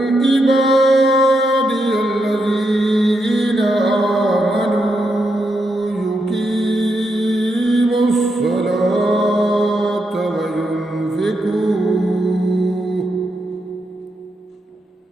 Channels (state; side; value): normal; both; correlation 0.82